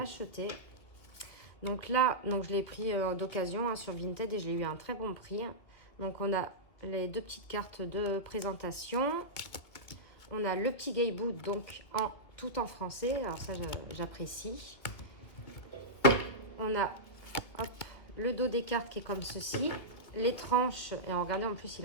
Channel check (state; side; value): late; right; 2.2 ms